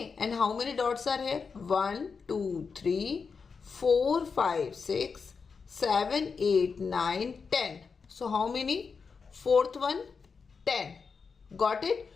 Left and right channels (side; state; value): right; quieter; 5.3 dB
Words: and how many dots are here? 1, 2, 3, 4, 5, 6, 7, 8, 9, 10. So how many? Fourth one, 10. Got it?